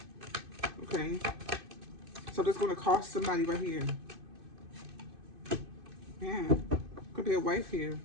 Okay, so that's going to cost somebody right here. Yeah, could be a wife here.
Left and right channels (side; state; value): left; late; 2.5 ms